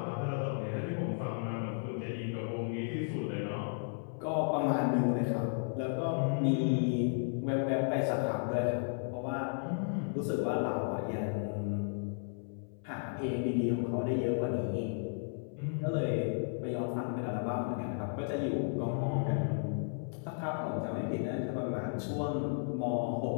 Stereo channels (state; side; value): silent; right; 55 dB below the other